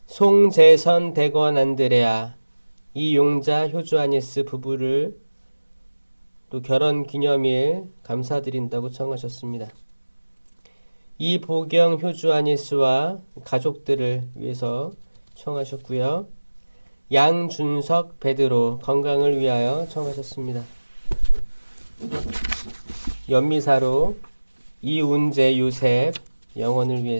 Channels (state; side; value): inverted; both; correlation -1.00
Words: 송재선 대건 안드레아 이용자 효주 아니스 부부를 또 결혼 기념일 감사드린다고 청하셨습니다. 이보경 효주 아니스와 가족들을 위해서 청하셨고요. 양준석 베드로 건강을 위하여 청하셨습니다. 연미사로 이운재 요셉 영혼을